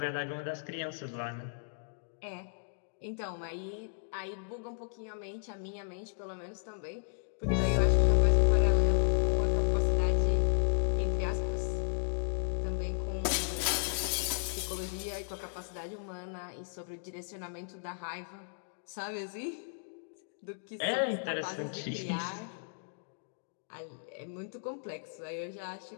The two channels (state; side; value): silent; right; digital silence